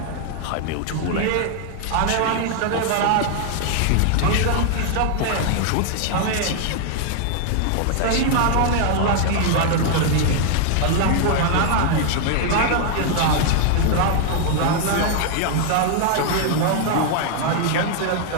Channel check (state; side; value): different; both; correlation 0.00